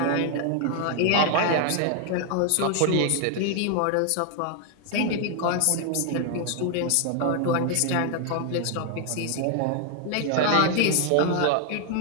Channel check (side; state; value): both; different; correlation 0.00